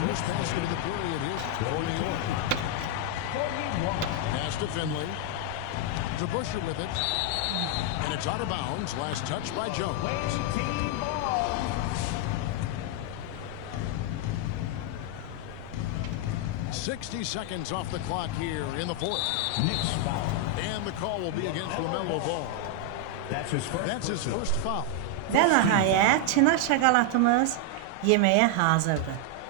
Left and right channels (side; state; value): both; different; correlation 0.00